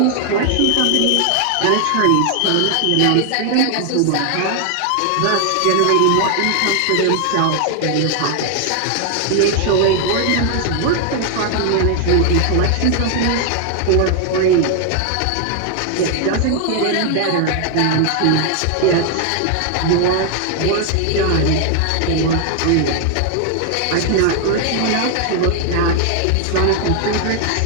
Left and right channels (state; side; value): different; both; correlation 0.00